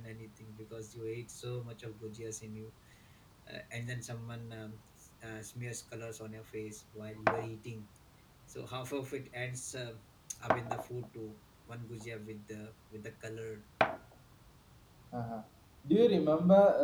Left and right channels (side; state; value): both; identical; correlation 1.00